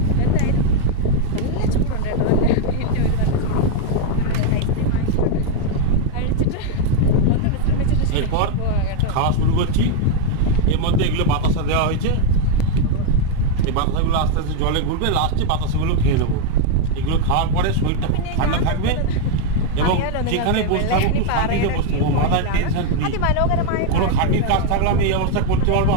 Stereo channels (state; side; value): different; both; correlation 0.01